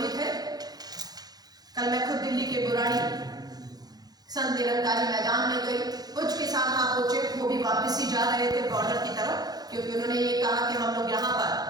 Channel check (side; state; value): left; late; 0.19 ms